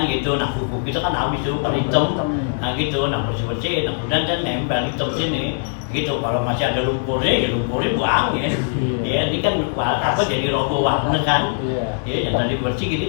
gitu. Nah buku kita kan habis tuh pada hitam, nah gitu, nah bersih nah kemudian kan nempel hitam sini gitu. Kalau masih ada lumpurnya ya lumpurnya buang ya. Ya ini kan apa jadi roboh warna kan. Ya yang tadi bersih gini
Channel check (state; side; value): silent; right; 65 dB below the other